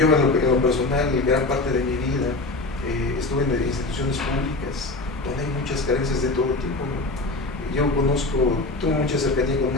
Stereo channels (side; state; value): right; quieter; 3.1 dB